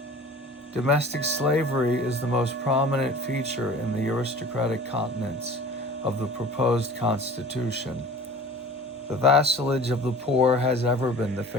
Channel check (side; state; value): both; normal; correlation 0.43